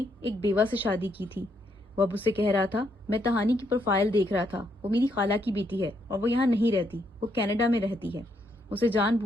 एक बेवा से शादी की थी। वो अब उसे कह रहा था, मैं तहानी की प्रोफाइल देख रहा था, वो मेरी खाला की बेटी है और वो यहाँ नहीं रहती, वो कनाडा में रहती है। उसे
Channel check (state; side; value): normal; both; correlation 0.75